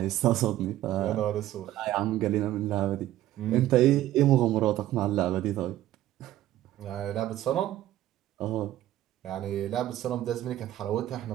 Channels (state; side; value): quieter; left; 14.0 dB